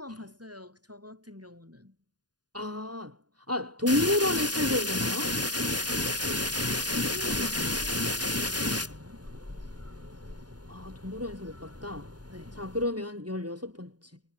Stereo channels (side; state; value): left; late; 0.69 ms